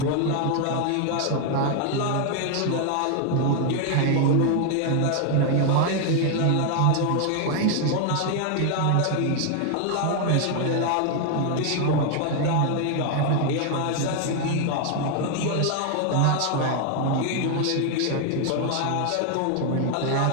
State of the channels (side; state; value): both; different; correlation 0.00